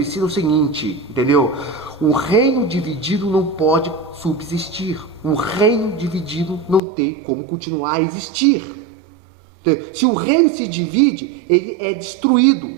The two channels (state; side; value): drops out; left; at 6.8 s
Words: é o seguinte, entendeu? Um reino dividido não pode subsistir. Um reino dividido não tem como continuar a existir. Entendeu? Se o reino se divide, ele é